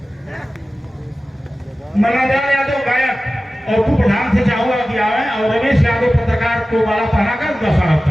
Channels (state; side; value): normal; both; correlation 0.96